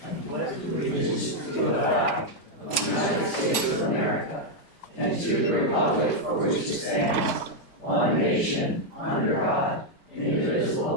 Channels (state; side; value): late; right; 4.7 ms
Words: Pledge allegiance to the flag of the United States of America and to the republic for which it stands, one nation, under God,